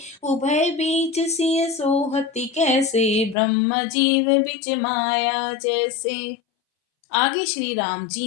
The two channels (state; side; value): drops out; right; at 3.4 s